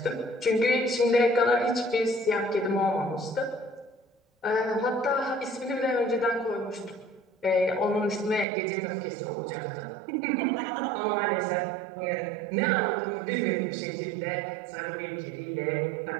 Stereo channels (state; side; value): drops out; left; at 8.5 s